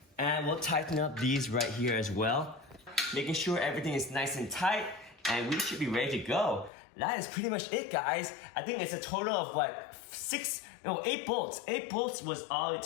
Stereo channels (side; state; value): right; drops out; at 6.7 s